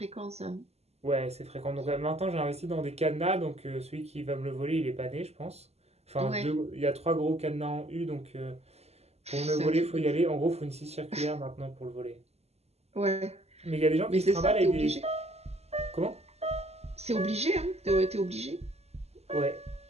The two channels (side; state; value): left; late; 0.30 ms